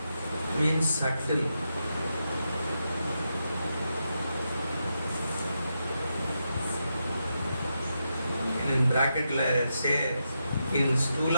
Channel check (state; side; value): inverted; both; correlation -0.85